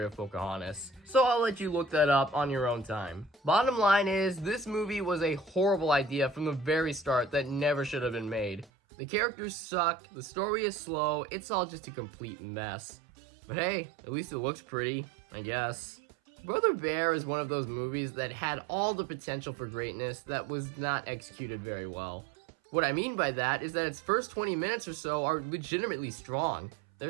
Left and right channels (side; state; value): left; drops out; at 8.7 s